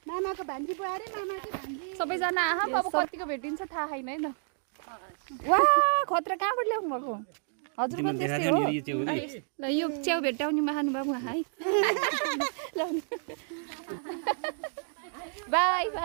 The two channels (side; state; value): left; silent; digital silence